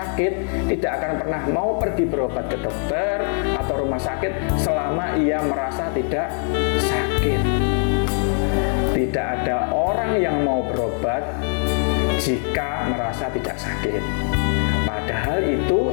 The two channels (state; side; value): silent; right; 64 dB below the other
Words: tidak akan pernah mau pergi berobat ke dokter atau rumah sakit selama ia merasa tidak sakit. Tidak ada orang yang mau berobat jika merasa tidak sakit. Padahal itu